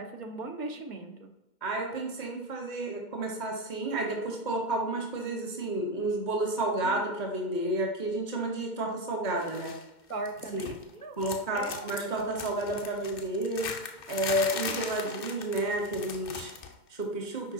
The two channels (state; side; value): late; right; 2.1 ms